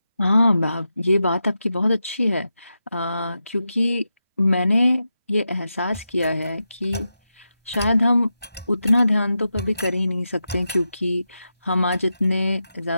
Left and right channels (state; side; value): inverted; both; correlation -0.89